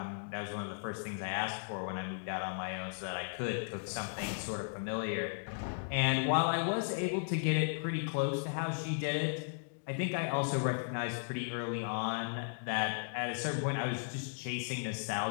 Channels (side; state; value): right; silent; digital silence